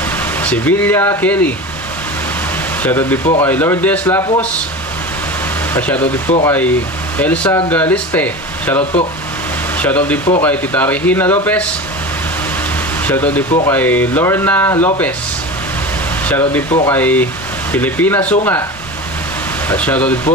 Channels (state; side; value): normal; both; correlation 0.29